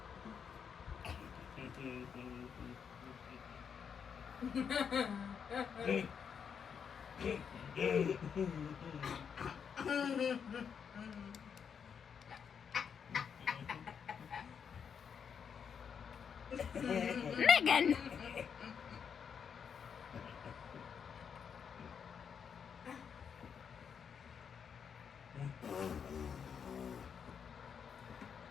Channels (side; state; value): right; quieter; 7.0 dB